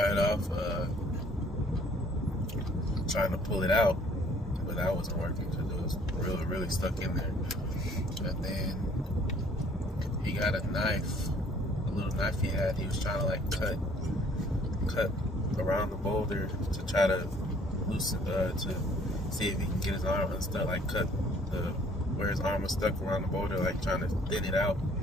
off trying to pull it out, but that wasn't working because it was really stuck in there. And then he got a knife, a little knife he had. He was trying to like cut around the boulder to try to loosen, to see if he can get his arm unstuck, like cut where his arm was stuck around the boulder, like trying to thin it out.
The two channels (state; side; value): normal; both; correlation 0.58